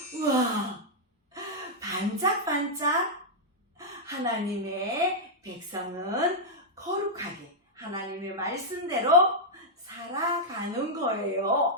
우와, 반짝반짝 하나님의 백성은 거룩하게 하나님의 말씀대로 살아가는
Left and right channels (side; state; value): both; normal; correlation -0.06